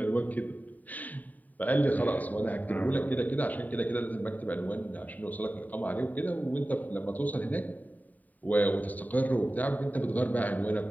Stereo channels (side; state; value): right; late; 0.078 ms